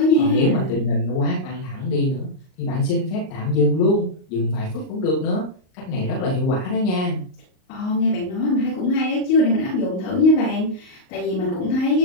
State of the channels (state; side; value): late; right; 38 ms